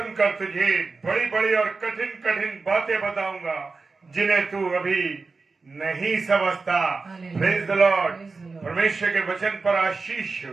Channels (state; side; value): quieter; left; 4.1 dB